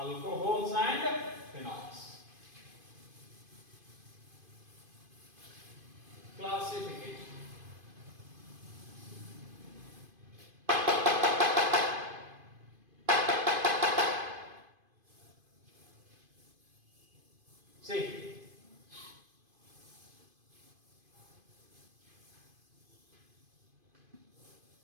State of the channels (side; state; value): left; late; 2.5 ms